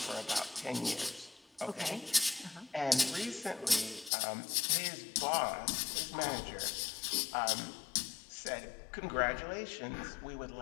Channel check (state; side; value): drops out; right; at 4.1 s